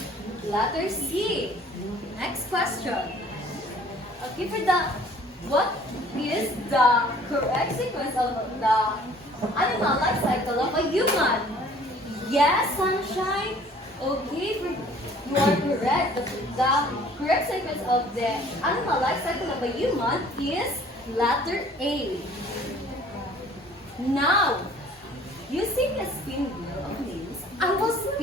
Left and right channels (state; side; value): normal; both; correlation 0.53